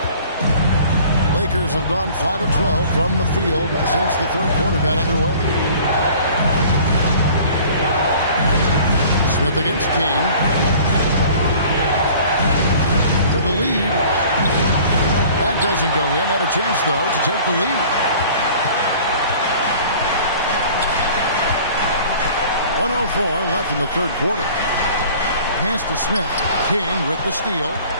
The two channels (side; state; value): both; inverted; correlation -0.48